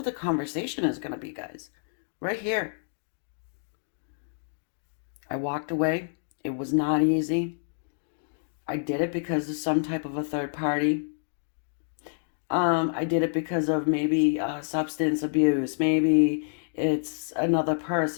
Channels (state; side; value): silent; right; digital silence